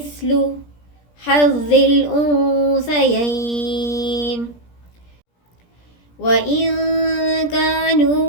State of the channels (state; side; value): late; right; 17 ms